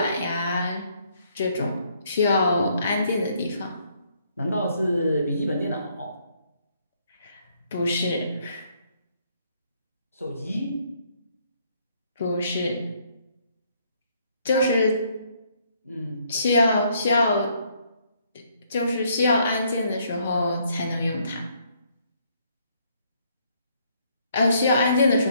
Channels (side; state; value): both; inverted; correlation -0.69